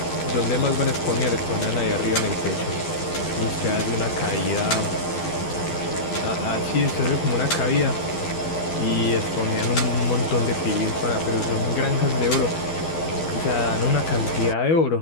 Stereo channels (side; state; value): right; late; 12 ms